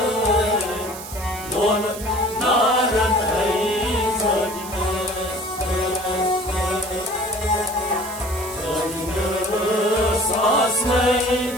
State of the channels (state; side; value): noise; right; hiss, 12 dB below the sound